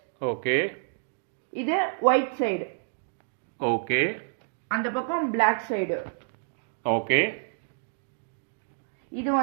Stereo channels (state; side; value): silent; left; digital silence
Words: ஓகே, இது ஒயிட் சைடு. ஓகே, அந்த பக்கம் பிளாக் சைடு. ஓகே, இது